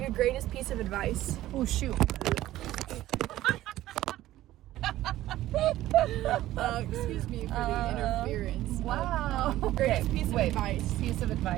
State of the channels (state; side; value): quieter; left; 14.8 dB